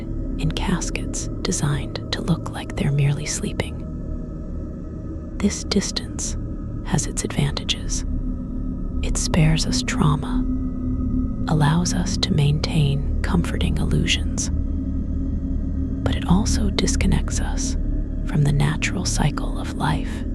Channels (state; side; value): identical; both; correlation 1.00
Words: in caskets designed to look like they're merely sleeping. This distance has its advantages. It spares us trauma, allows us to maintain comforting illusions, but it also disconnects us from the natural cycle of life